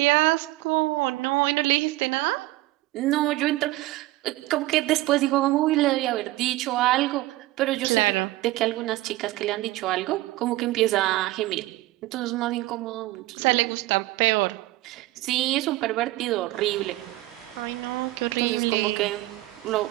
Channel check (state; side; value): quieter; left; 18.5 dB